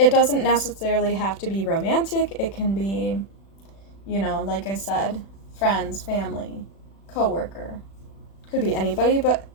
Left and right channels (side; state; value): right; late; 36 ms